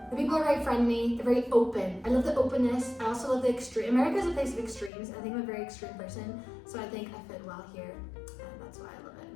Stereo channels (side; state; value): right; drops out; at 4.9 s